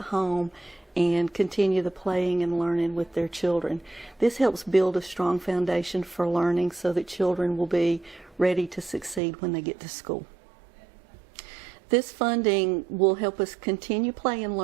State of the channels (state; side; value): drops out; left; at 9.2 s